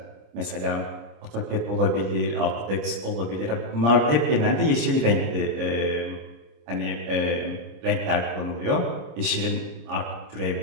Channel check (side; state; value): left; late; 26 ms